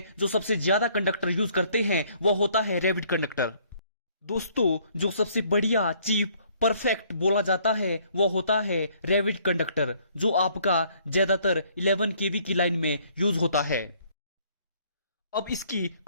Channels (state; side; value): inverted; both; correlation -0.62